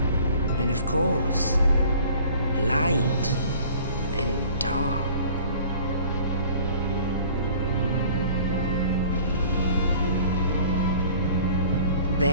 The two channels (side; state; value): both; inverted; correlation -0.49